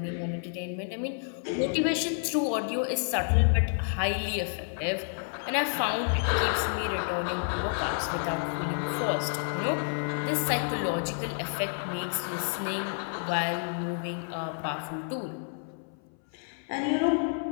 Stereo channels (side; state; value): right; silent; 58 dB below the other